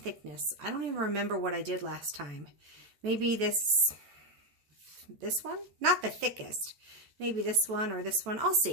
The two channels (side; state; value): left; late; 14 ms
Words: I don't even remember what I did last time. Maybe this one? Not the thickest. Maybe this one or this one. I'll